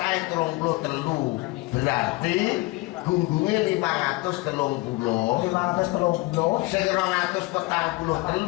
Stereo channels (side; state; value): right; quieter; 22.0 dB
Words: 33. Berarti gunggunge 530. 530. Sing